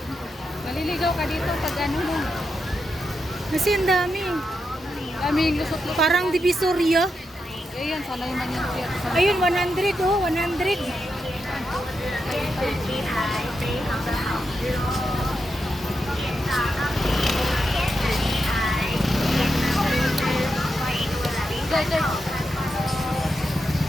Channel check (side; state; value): both; normal; correlation 0.86